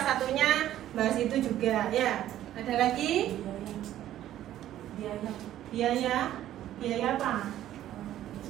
satunya bahas itu juga ya. Ada lagi? Biaya apa?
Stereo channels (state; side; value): quieter; left; 12.6 dB